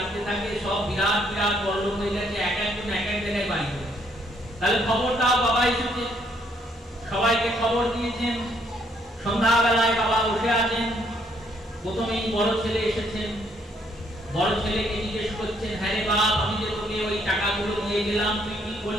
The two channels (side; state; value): both; normal; correlation 0.69